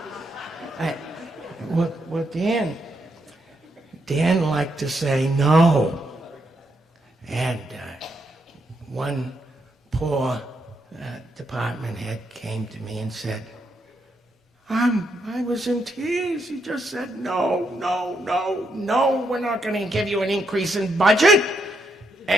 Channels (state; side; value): normal; both; correlation 0.79